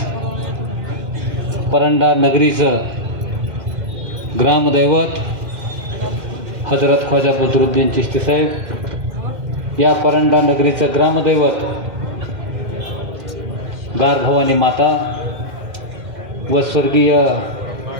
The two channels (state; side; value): late; left; 2.1 ms